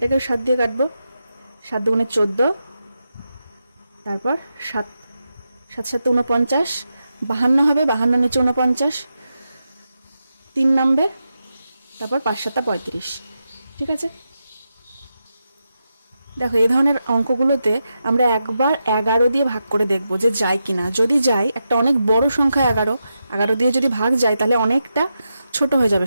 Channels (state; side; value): inverted; both; correlation -0.87